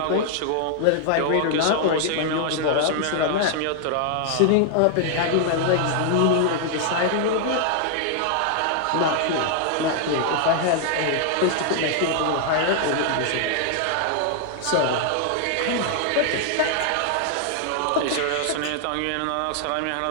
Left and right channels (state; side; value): different; both; correlation 0.00